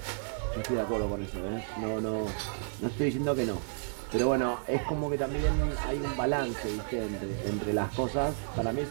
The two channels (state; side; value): silent; left; 57 dB below the other